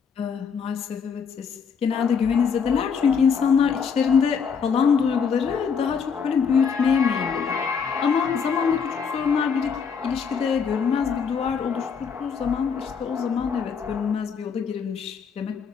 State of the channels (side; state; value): right; quieter; 6.3 dB